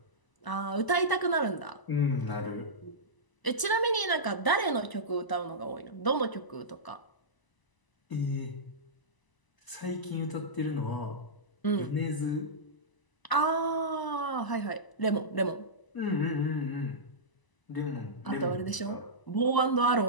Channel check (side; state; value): right; late; 1.0 ms